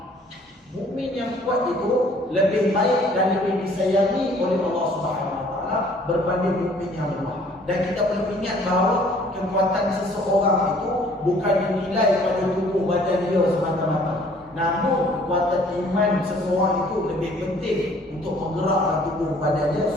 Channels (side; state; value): both; normal; correlation 0.57